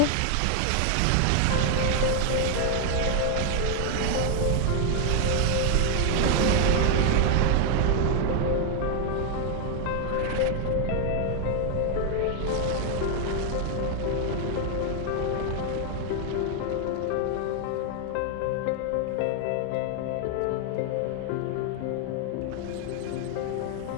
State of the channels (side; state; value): both; different; correlation 0.00